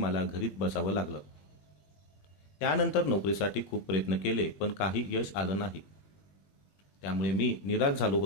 घरीच बसावं लागलं. त्यानंतर नोकरीसाठी खूप प्रयत्न केले, पण काही यश आलं नाही. त्यामुळे मी निराश झालो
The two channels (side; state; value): right; late; 21 ms